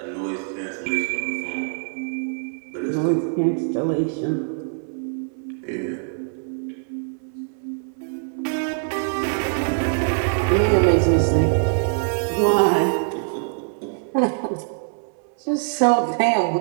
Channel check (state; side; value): silent; left; 63 dB below the other